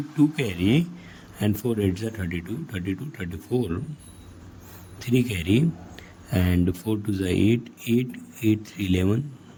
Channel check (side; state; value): both; identical; correlation 1.00